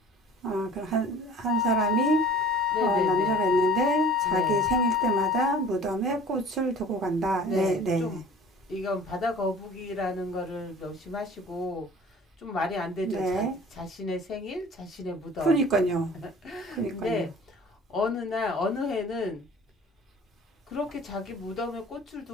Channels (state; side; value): normal; both; correlation 0.46